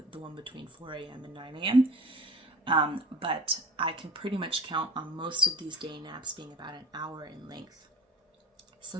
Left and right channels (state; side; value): normal; both; correlation 0.45